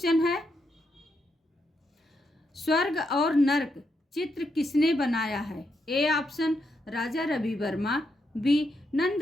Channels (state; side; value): normal; both; correlation 0.81